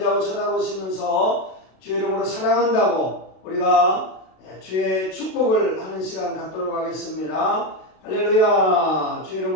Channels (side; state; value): right; late; 32 ms